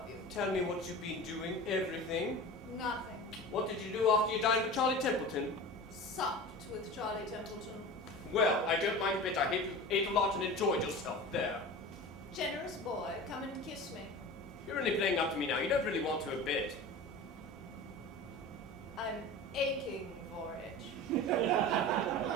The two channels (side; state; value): both; normal; correlation 0.33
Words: you. Tell me what you've been doing. Everything. Nothing. What did you do after you dined with Charlie Templeton? Supped with Charlie Templeton. Well, I don't mind a bit. I hate you ate a lot and enjoyed yourself there. Generous boy, come and kiss me. You're only playing up to me now. You don't really want to a bit. I'm aching for it.